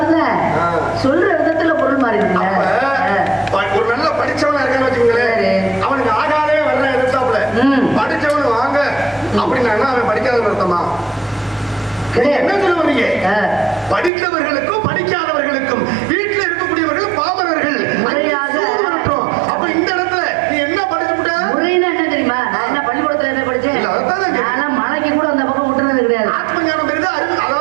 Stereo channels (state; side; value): drops out; left; at 14.1 s